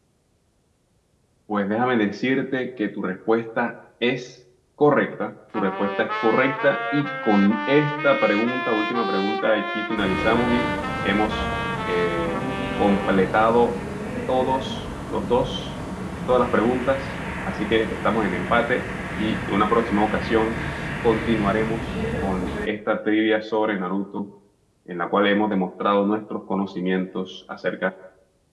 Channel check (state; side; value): identical; both; correlation 1.00